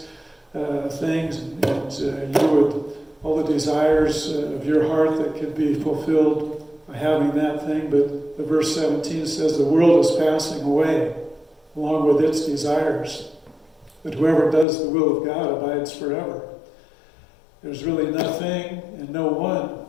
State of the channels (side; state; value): right; drops out; at 14.7 s